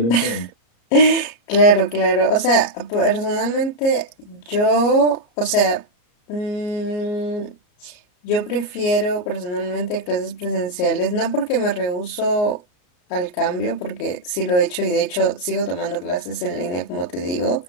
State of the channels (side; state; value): right; late; 34 ms